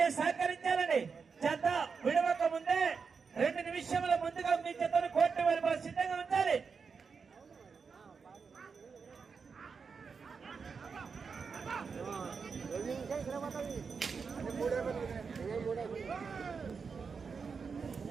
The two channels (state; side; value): quieter; left; 5.4 dB